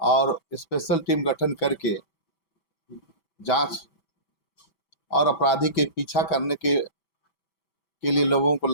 स्पेशल टीम गठन करके जांच और अपराधी के पीछा करने के लिए लोगों को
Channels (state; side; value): late; right; 5.1 ms